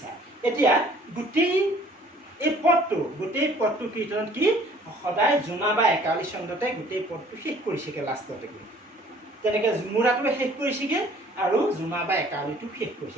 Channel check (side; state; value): both; normal; correlation 0.55